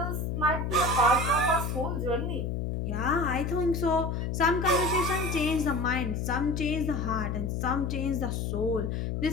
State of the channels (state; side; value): noise; left; hum, 1 dB below the sound